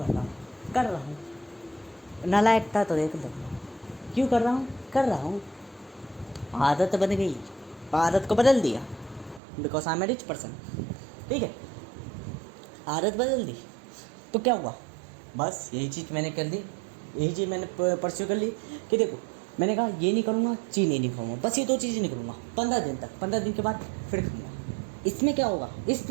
रहा हूँ, नालायक था तो देख लो, क्यों कर रहा हूँ, आदत बन गई, आदत को बदल दिया because I am a rich person. ठीक है, आदत बदल दी तो क्या हुआ? बस यही चीज़ मैंने कर दी, यही चीज़ मैंने परस्यू कर ली कि देखो, मैंने कहा ये नहीं करूँगा, चीनी नहीं खाऊंगा, बस ये 2 चीज़ें नहीं करूँगा 15 दिन तक। 15 दिन के बाद फिर खाऊंगा। इसमें क्या होगा? इस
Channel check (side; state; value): left; drops out; at 9.4 s